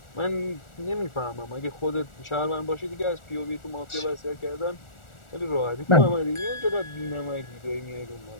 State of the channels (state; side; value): late; right; 1.4 ms